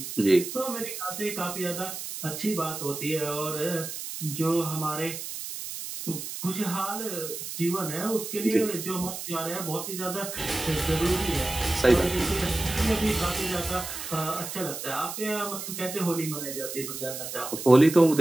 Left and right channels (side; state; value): right; noise; hiss, 7 dB below the sound